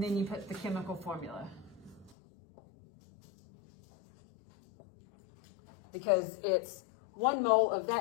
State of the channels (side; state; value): right; drops out; at 2.1 s